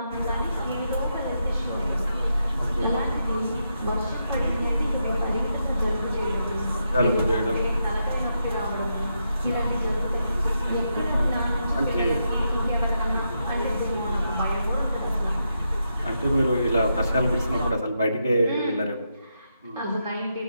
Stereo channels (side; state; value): both; inverted; correlation -0.83